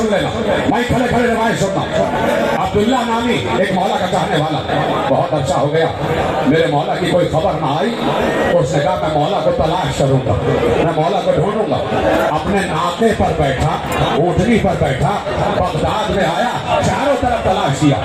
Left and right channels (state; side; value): identical; both; correlation 1.00